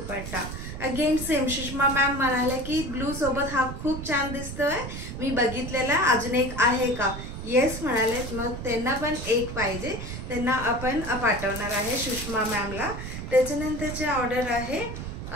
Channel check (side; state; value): right; noise; rumble, 8 dB below the sound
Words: again same. Sushma ma'am म्हणाले की ब्लू सोबत हा खूप छान दिसतोय, मी बघितलेला, अजून एक आहे का? येस म्हणाले, मग त्यांना पण एक पाहिजे, त्यांना आपण पाठवणार आहे सुषमा मॅमला। त्याच्यानंतरचे ऑर्डर आहे